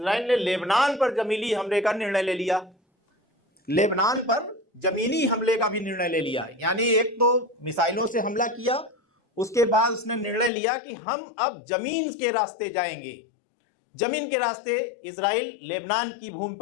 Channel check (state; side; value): drops out; right; at 10.5 s